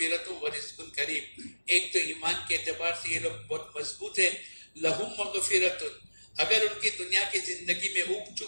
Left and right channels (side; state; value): both; inverted; correlation -1.00